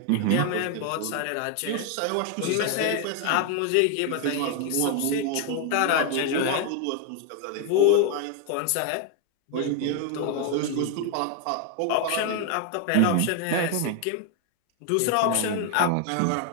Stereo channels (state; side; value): different; both; correlation 0.01